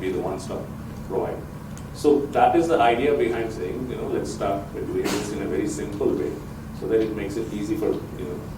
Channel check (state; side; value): identical; both; correlation 1.00